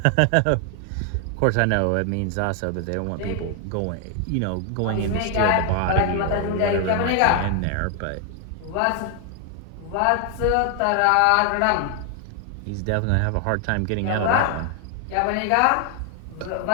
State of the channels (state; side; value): different; both; correlation 0.00